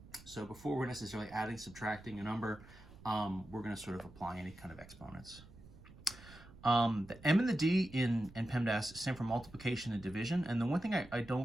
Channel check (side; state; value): right; noise; rumble, 20 dB below the sound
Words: So before we're necessarily adding, subtracting a number, we're going to sort of apply any kind of exponents. The M and the D in PEMDAS stand for multiplication and division. And the one thing I